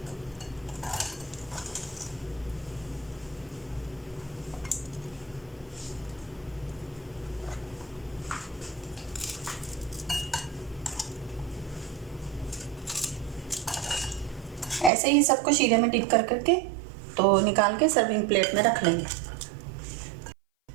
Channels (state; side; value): drops out; left; at 14.9 s